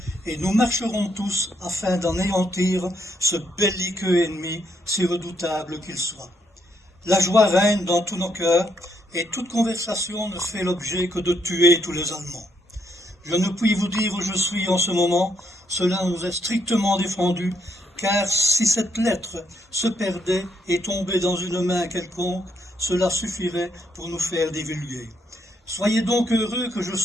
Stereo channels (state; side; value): normal; both; correlation 0.75